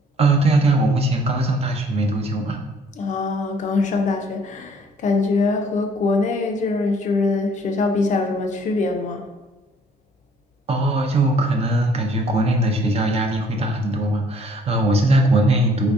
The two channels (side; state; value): both; normal; correlation 0.60